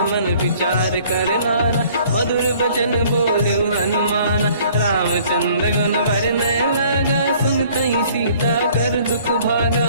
मन विचार कर नाना, मधुर बचन बोले हनुमान, रामचंद्र गुण वरनय लगा, सुनतहि सीता कर दुख भागा,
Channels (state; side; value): inverted; both; correlation -0.56